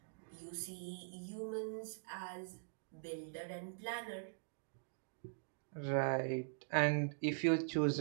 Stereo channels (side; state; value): left; silent; digital silence